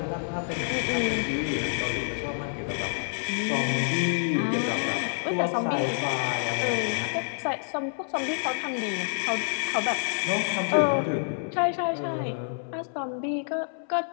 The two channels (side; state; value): right; silent; 60 dB below the other